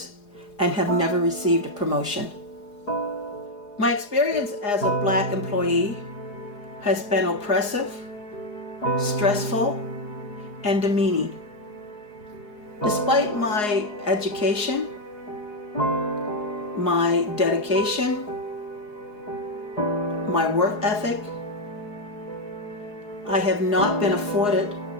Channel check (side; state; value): right; late; 4.8 ms